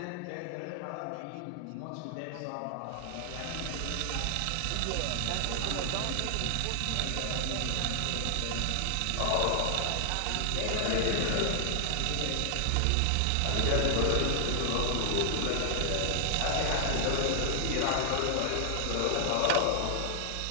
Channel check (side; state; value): both; different; correlation 0.00